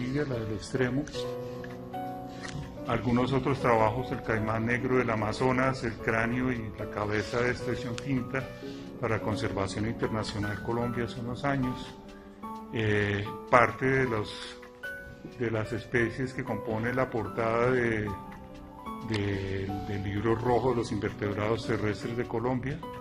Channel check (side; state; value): both; identical; correlation 1.00